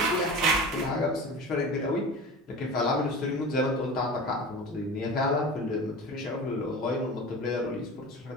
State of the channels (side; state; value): both; normal; correlation 0.33